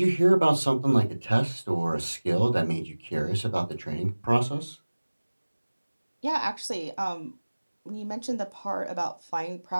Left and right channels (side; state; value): both; inverted; correlation -1.00